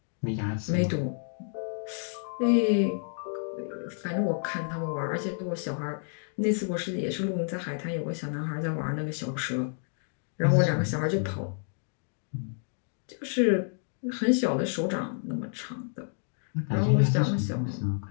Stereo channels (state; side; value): silent; right; 58 dB below the other